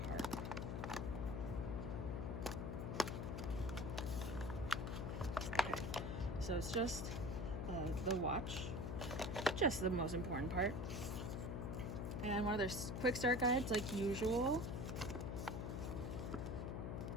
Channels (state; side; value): noise; left; hum, 3 dB below the sound